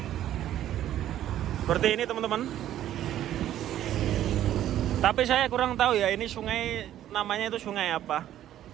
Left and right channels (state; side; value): quieter; left; 12.1 dB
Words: Seperti ini teman-teman. Tapi saya kurang tahu ya, ini sungai namanya itu sungai apa.